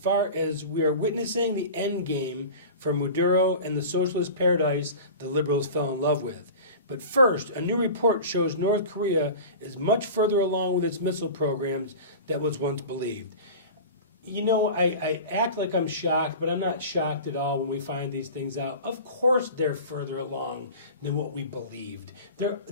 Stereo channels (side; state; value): both; inverted; correlation -0.35